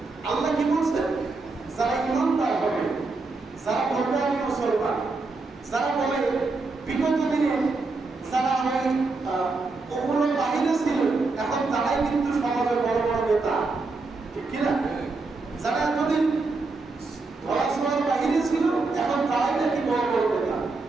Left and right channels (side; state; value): left; quieter; 3.7 dB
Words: আল্লাহ কি বলছেন? যারা ইমানদার হবে, যারা বলবে আমি মুসলমান, যারা বলে বিগত দিনে যারা ওই ওগুলো বাহিরে ছিল এখন তারাই কিন্তু সমাজের বড় বড় নেতা, ঠিক কিনা? যারা এতদিন ধরাছোঁয়ার বাহিরে ছিল এখন তারাই নাকি বড় বড় নেতা।